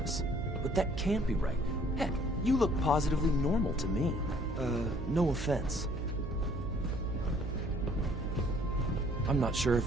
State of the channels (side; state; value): right; noise; hum, 6 dB below the sound